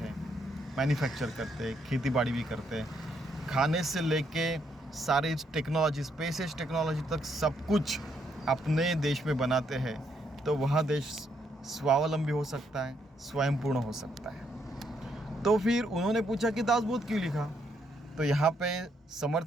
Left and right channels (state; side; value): normal; both; correlation 0.74